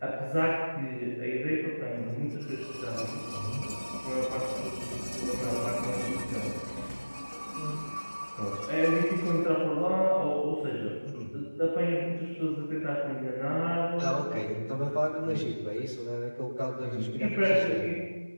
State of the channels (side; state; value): both; inverted; correlation -1.00